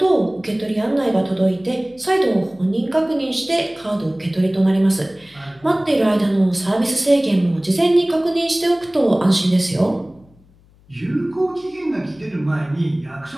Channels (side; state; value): left; noise; hum, 29 dB below the sound